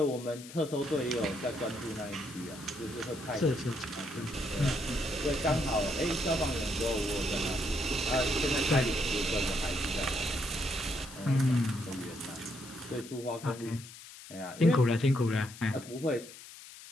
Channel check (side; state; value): left; noise; hiss, 16 dB below the sound